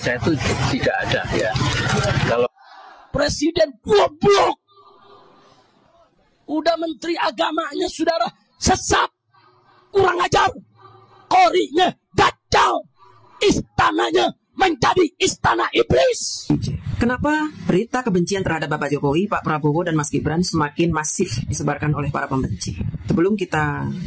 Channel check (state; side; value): identical; both; correlation 1.00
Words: itu tidak ada ya. Kalau Presiden goblok, udah menteri agamanya saudara sesat, kurang ajar, korinya dajjal, istananya menjadi istana iblis. Kenapa berita kebencian terhadap Bapak Jokowi, Pak Prabowo, dan Mas Gibran semakin masif disebarkan oleh para pembenci? Sebelum kita